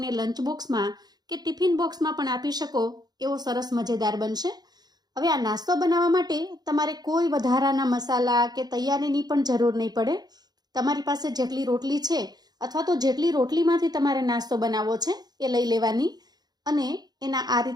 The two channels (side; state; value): left; late; 0.19 ms